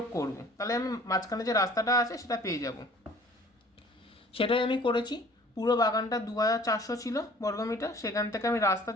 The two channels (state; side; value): normal; both; correlation 0.51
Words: করব, তাহলে আমি মাঝখানে যে রাস্তাটা আছে সেটা পেয়ে যাব। সেটাই আমি করেছি। পুরো বাগানটা 2400 ছিল বর্গমিটার, সেখান থেকে আমি রাস্তা